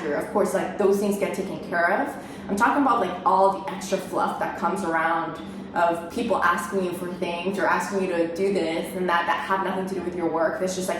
Of course, like those things get taken care of. I'm talking about like all the extra fluff that comes around of people asking you for things or asking you to do this and that have nothing to do with your work. There's just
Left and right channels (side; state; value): both; identical; correlation 1.00